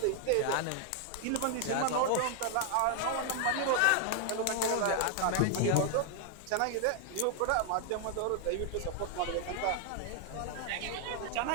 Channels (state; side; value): different; both; correlation 0.00